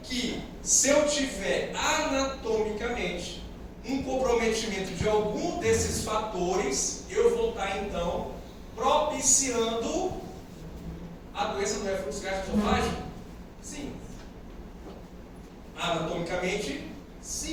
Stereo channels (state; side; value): identical; both; correlation 1.00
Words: que se eu tiver anatomicamente um comprometimento de algum desses fatores, eu vou estar, então, propiciando a doença do refluxo gastroesofágico? Sim. Anatomicamente,